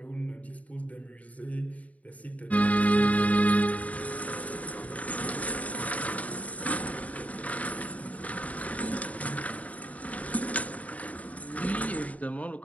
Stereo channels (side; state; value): right; late; 0.070 ms